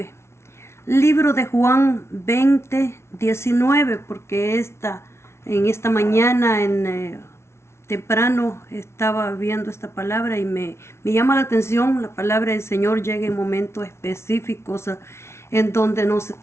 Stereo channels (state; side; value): late; right; 0.13 ms